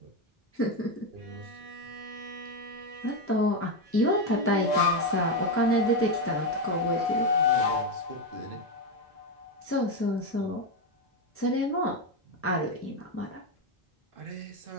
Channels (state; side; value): normal; both; correlation 0.09